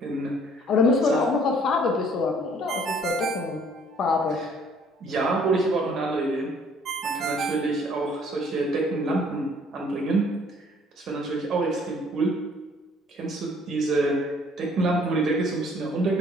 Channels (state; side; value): normal; both; correlation 0.59